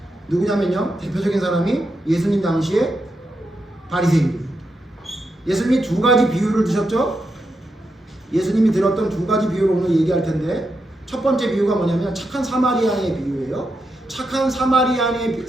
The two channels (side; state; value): both; normal; correlation 0.85